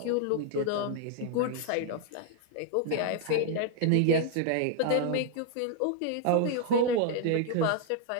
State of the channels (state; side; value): different; both; correlation 0.00